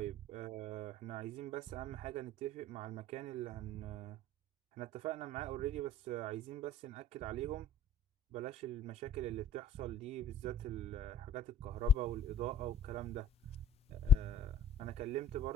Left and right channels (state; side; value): normal; both; correlation 0.46